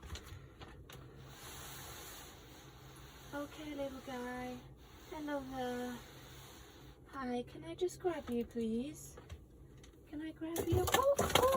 Okay, little guy. Hello there. Hi, can I just grab you, please? Can I grab you?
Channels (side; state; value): both; identical; correlation 1.00